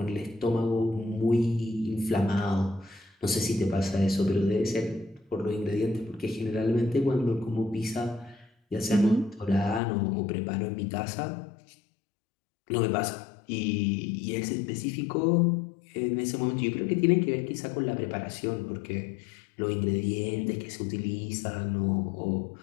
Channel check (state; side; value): drops out; right; at 9.8 s